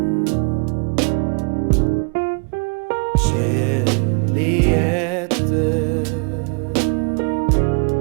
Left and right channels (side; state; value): left; quieter; 34.0 dB